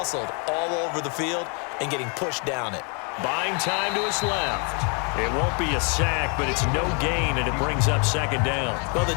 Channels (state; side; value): quieter; right; 36.1 dB